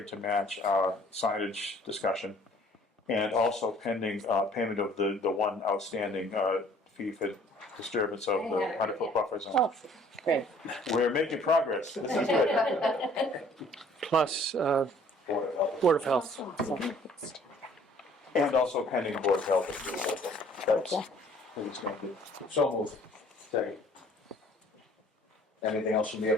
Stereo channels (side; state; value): both; normal; correlation 0.56